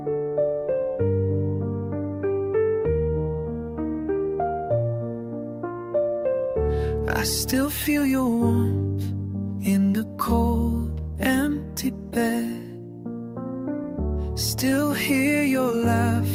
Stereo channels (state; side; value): identical; both; correlation 1.00